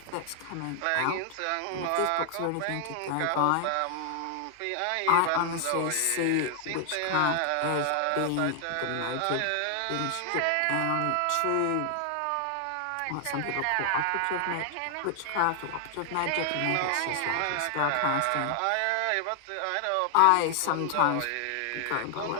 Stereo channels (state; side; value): different; both; correlation 0.00